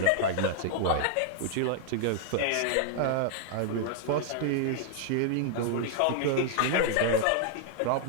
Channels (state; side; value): different; both; correlation 0.00